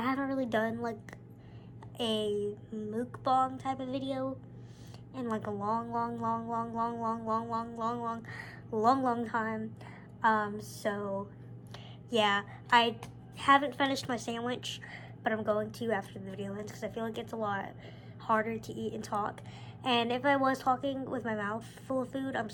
haven't really done a mukbang type of video in a long time. So yeah, I haven't finished my sandwich, but I'm going to after the video ends, because I feel like it's a lot harder to eat and talk. And if I was talking with my mouth full of food, I'm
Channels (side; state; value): both; identical; correlation 1.00